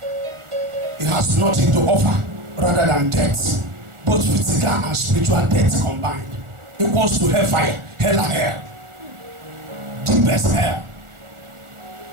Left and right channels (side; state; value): left; late; 1.4 ms